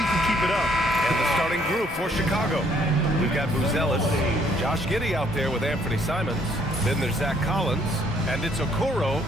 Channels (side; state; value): both; normal; correlation 0.66